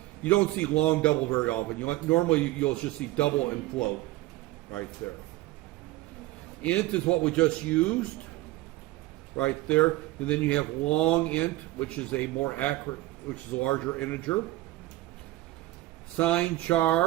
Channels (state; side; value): quieter; left; 17.8 dB